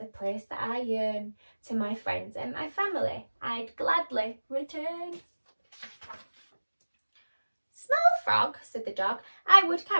place that I yearn. To my friends and my family, I'd gladly return. Small frog, said the dog, I would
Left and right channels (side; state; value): both; inverted; correlation -1.00